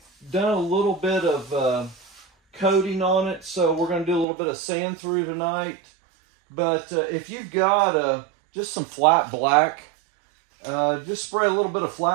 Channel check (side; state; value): left; drops out; at 4.2 s